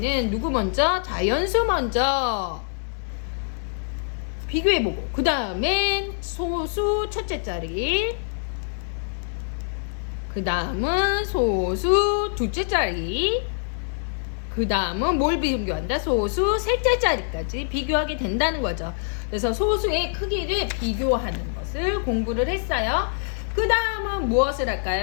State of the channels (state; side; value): silent; right; 62 dB below the other